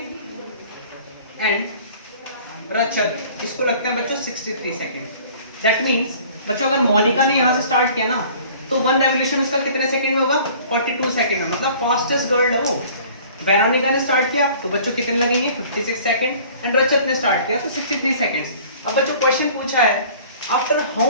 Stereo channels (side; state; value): both; inverted; correlation -0.49